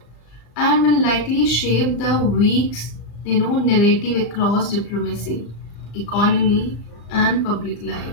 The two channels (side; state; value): right; late; 34 ms